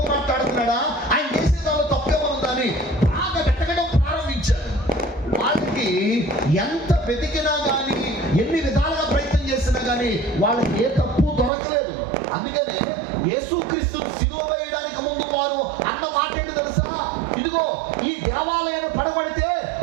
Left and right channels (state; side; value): drops out; left; at 11.5 s